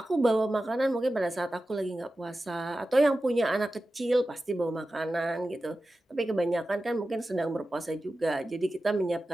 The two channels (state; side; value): normal; both; correlation 0.94